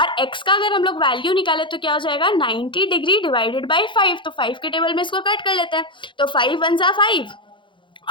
x का अगर हम लोग वैल्यू निकाले तो क्या हो जाएगा, 90 डिग्री डिवाइडेड बाई 5। तो 5 के टेबल में इसको कट कर लेते हैं, तो 5 1 जा 5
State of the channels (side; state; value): right; late; 0.24 ms